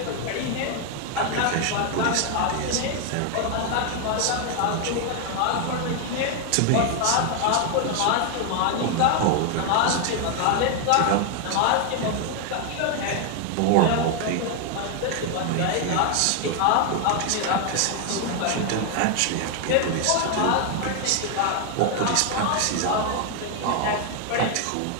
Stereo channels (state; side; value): different; both; correlation 0.00